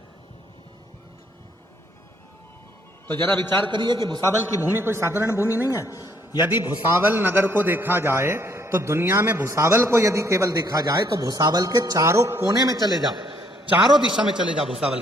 तो जरा विचार करिए कि भुसावल की भूमि कोई साधारण भूमि नहीं है। यदि भुसावल नगर को देखा जाए तो दुनिया में भुसावल को यदि केवल देखा जाए तो भुसावल के चारों कोने में चले जाओ, चारों दिशा में चले जाओ, भुसावल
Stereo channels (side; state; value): both; normal; correlation 0.67